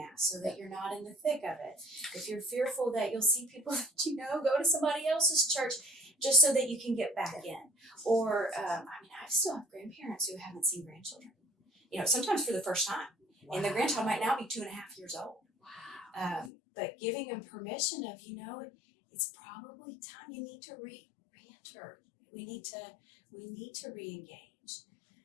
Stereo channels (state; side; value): drops out; right; at 16.5 s